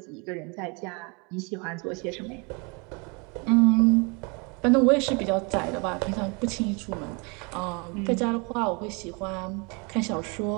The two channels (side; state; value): left; quieter; 31.0 dB